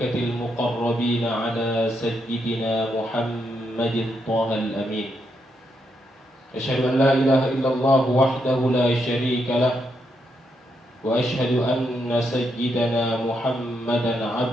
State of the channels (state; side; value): normal; both; correlation 0.80